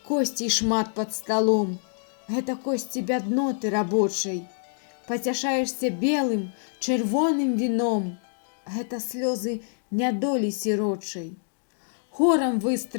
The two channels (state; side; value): silent; right; digital silence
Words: косцей шмат пад сталом, гэта косці бядноты рабочай. Пацяшаешся белым, чырвоным віном, гэта слёзы нядолі сірочай. Хорам